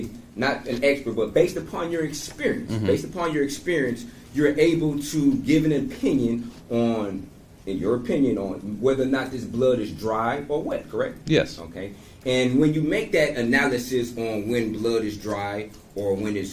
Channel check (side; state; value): both; identical; correlation 1.00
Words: not an expert, but based upon your experience, you're able to give an opinion on, in your opinion, on whether or not this blood is dry or wet, correct? Yes. Okay. And when you make that analysis on when blood is dry or when